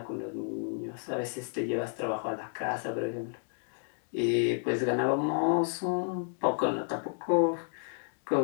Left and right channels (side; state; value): right; silent; 57 dB below the other